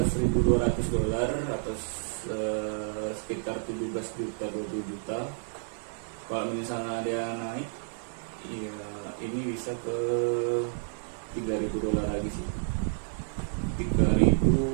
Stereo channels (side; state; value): left; silent; digital silence